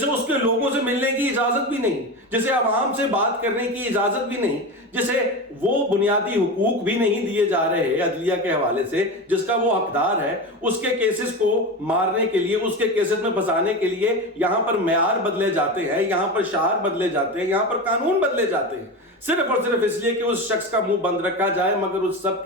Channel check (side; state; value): both; normal; correlation 0.23